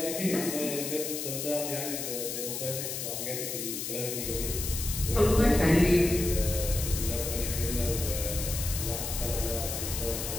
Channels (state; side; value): noise; left; hiss, 4 dB below the sound